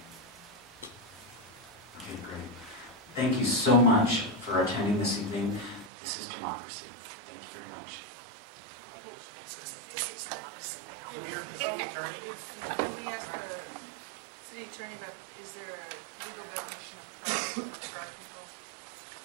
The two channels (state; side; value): drops out; left; at 5.9 s